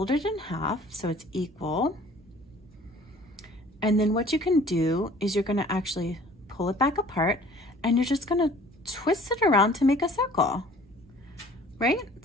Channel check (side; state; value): both; normal; correlation 0.51